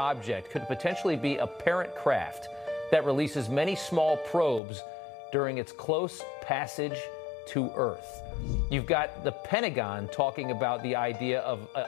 could potentially be a parent craft that releases many small probes during its close passage to Earth. You've got the Pentagon talking about the idea of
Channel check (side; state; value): right; drops out; at 4.6 s